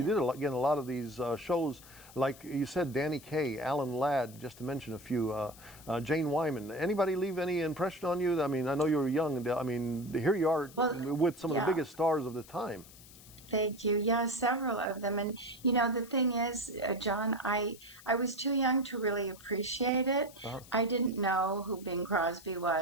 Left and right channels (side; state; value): left; noise; hiss, 20 dB below the sound